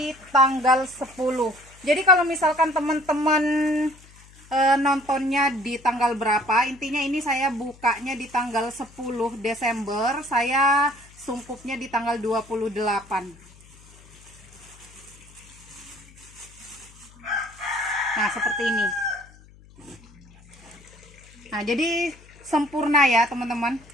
tanggal 10. Jadi kalau misalkan teman-teman nontonnya di tanggal berapa, intinya ini saya bukanya di tanggal 10 Desember, saya sungkupnya di tanggal 28. Nah, seperti ini. Nah, jadi sempurna ya teman-teman.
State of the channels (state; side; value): noise; left; hum, 24 dB below the sound